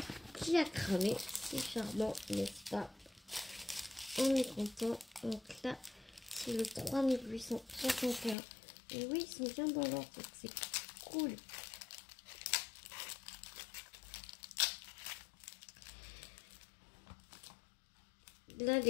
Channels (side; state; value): right; drops out; at 8.3 s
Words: qui a cramé. C'est charmant, n'est-ce pas? On est content. Donc là, c'est le 3861. Et oui, ils sont bien dans l'ordre, donc c'est cool. Là,